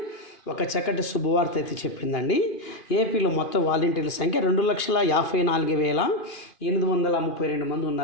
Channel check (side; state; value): right; late; 2.5 ms